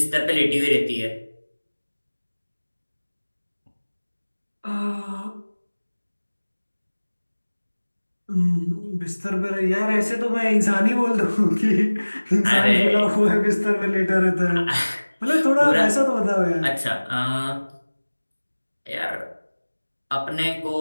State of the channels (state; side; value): inverted; both; correlation -1.00